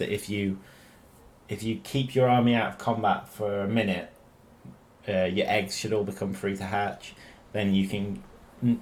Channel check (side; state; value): both; identical; correlation 1.00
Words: if you keep your army out of combat for a minute, your eggs should all become free to hatch. Then you can